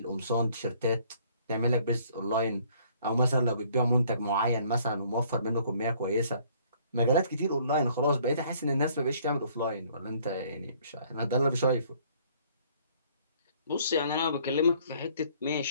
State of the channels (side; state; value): both; inverted; correlation -0.60